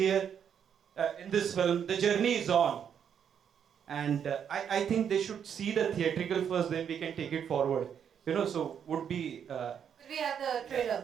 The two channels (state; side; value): quieter; left; 8.1 dB